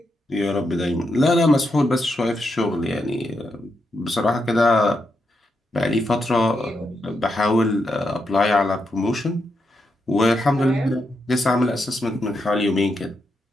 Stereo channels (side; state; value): both; normal; correlation 0.83